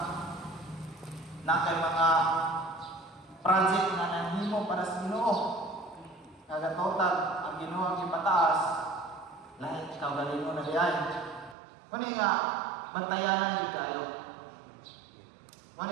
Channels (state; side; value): drops out; left; at 11.6 s